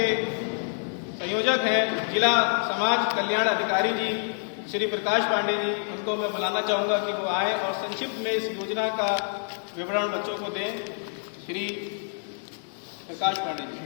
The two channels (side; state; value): right; silent; digital silence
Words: संयोजक हैं जिला समाज कल्याण अधिकारी जी श्री प्रकाश पांडे जी, उनको मैं बुलाना चाहूँगा कि वो आए और संक्षिप्त में इस योजना का विवरण बच्चों को दें। श्री प्रकाश पांडे जी।